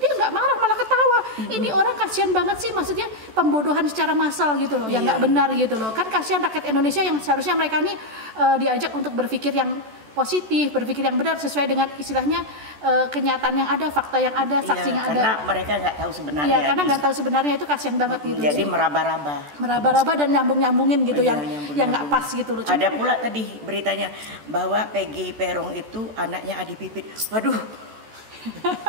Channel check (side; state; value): left; late; 14 ms